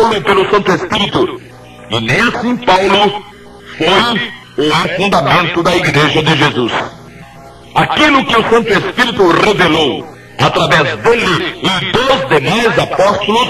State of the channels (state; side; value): identical; both; correlation 1.00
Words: pelo Santo Espírito, e nem assim Paulo foi o fundamento da igreja de Jesus. Aquilo que o Santo Espírito revelou através dele e dos demais apóstolos